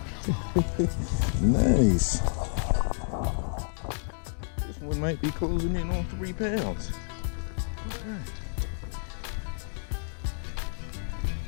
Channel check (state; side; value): silent; right; 58 dB below the other